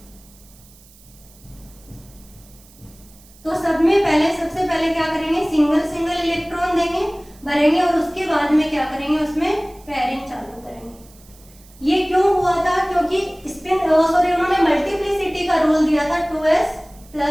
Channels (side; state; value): right; noise; hiss, 26 dB below the sound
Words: तो सब में सबसे पहले क्या करेंगे, सिंगल इलेक्ट्रॉन देंगे, भरेंगे और उसके बाद में क्या करेंगे, उसमें पेयरिंग चालू करेंगे। ये क्यों हुआ था, क्योंकि उन्होंने मल्टीप्लिसिटी का रूल दिया था 2s